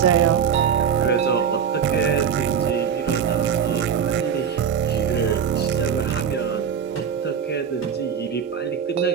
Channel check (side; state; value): left; quieter; 7.6 dB